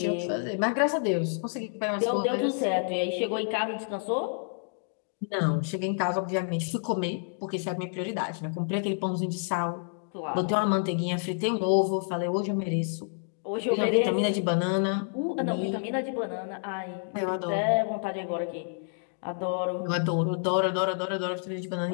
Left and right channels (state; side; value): silent; right; digital silence